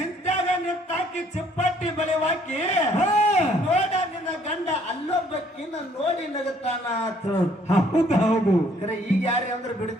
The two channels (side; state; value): both; normal; correlation 0.63